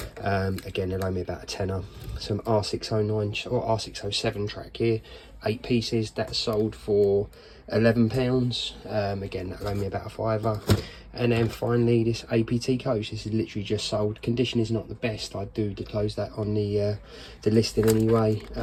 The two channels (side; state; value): both; identical; correlation 1.00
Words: Again, they'll owe me about a tenner. Some R609 or R607 track here, 8 pieces. That sold for £11. Again, that'll owe me about a fiver. And then finally, this APT coach. This is literally just sold. Condition is not the best. I do disclose that on the listing anyway.